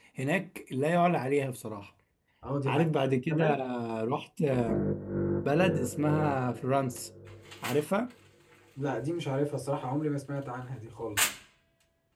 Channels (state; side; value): identical; both; correlation 1.00